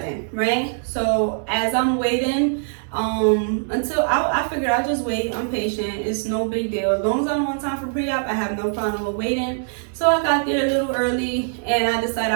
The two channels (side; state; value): left; silent; 63 dB below the other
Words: right? So as I'm waiting, until I figured I'll just wait. I'm patient. It's no big deal. As long as I'm on time for pre-op, I have no problem with waiting. So I got there a little early, and I decided